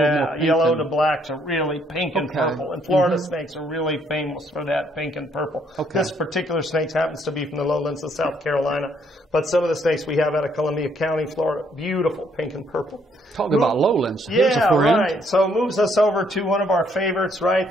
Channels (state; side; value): normal; both; correlation 0.69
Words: yellow to black to really pink and purple. And Florida snakes are really famous for that pink and purple. This particular snake happens to be from the lowlands of South Carolina. But some of the snakes we have out of Columbia County, Florida, beautiful pink and purple. Talk about lowlands. Yeah, right. So it moves us over to one of our favorites, right?